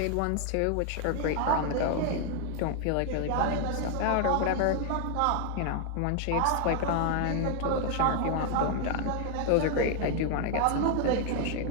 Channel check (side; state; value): both; different; correlation 0.00